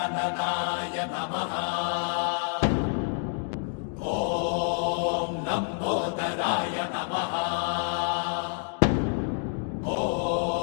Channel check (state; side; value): silent; right; 59 dB below the other